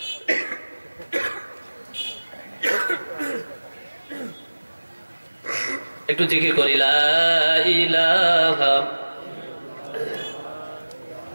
একটু জিকির করি, লা ইলাহা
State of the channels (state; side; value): inverted; both; correlation -1.00